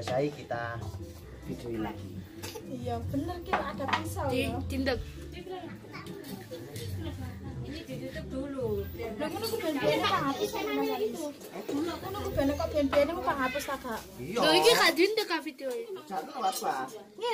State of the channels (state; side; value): identical; both; correlation 1.00